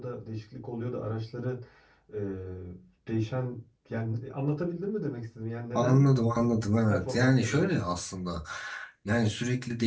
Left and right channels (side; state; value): both; identical; correlation 1.00